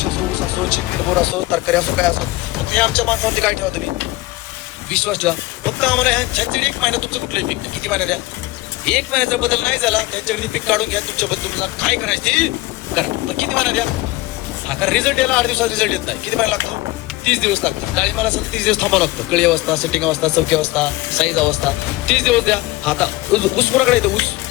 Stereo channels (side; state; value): right; quieter; 19.7 dB